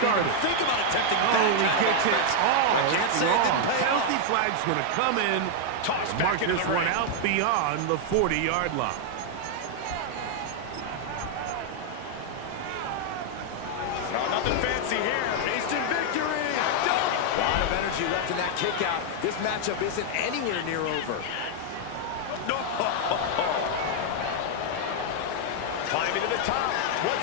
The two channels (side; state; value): both; different; correlation -0.01